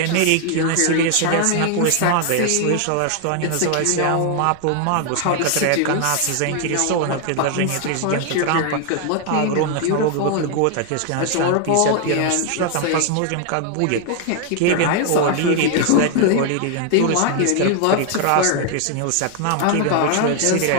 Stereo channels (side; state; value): both; different; correlation 0.00